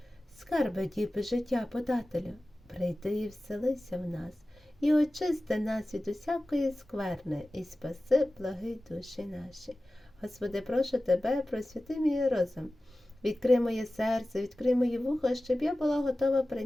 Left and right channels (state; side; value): normal; both; correlation 0.96